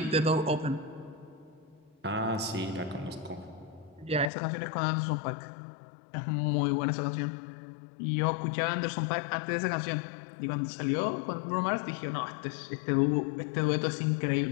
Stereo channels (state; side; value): drops out; right; at 4.3 s